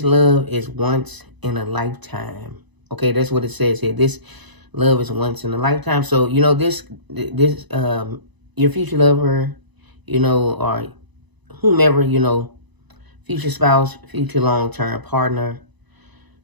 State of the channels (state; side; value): late; left; 1.0 ms